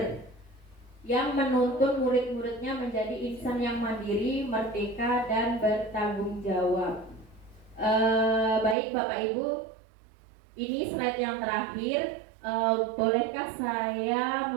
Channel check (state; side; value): drops out; left; at 8.8 s